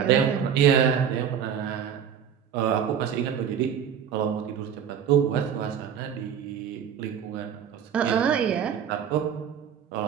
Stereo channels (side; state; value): left; quieter; 8.3 dB